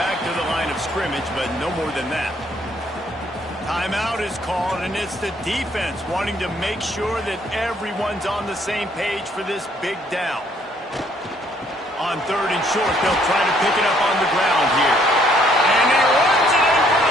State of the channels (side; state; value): both; normal; correlation 0.65